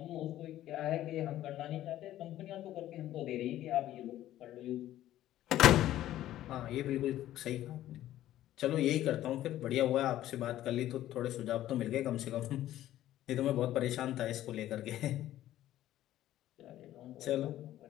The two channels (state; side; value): quieter; right; 13.4 dB